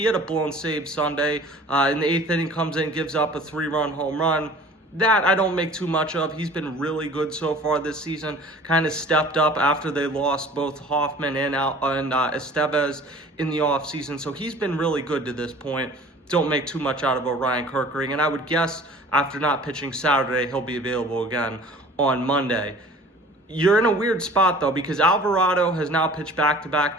had a blown save Sunday. In the 8th inning, comes in, gives up a 3-run home run. That I don't make too much of. He's been really good so far this season. Kind of stepped up after they lost both Hoffman and Estevez in the offseason. So he's been really good to this point. Don't make too much out of Orion Kerkering. And I would guess after not pitching Saturday, he'll be available again on Monday. You're in a weird spot, though, because Alvarado has now pitched back-to-back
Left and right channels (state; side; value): normal; both; correlation 0.46